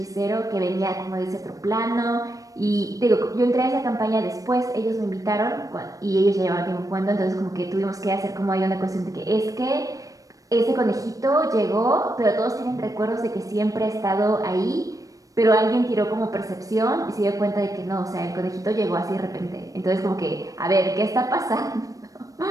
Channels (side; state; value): left; late; 0.16 ms